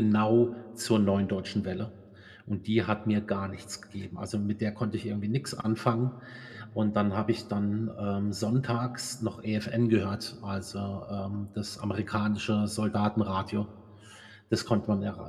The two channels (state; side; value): identical; both; correlation 1.00